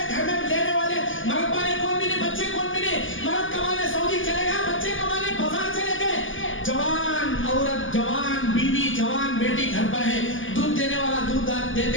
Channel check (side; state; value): right; late; 0.58 ms